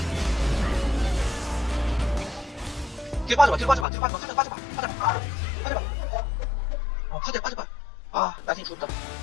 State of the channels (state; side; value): drops out; right; at 3.9 s